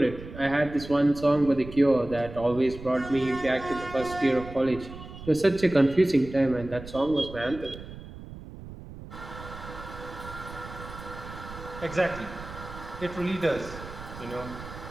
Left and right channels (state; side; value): noise; right; rumble, 13 dB below the sound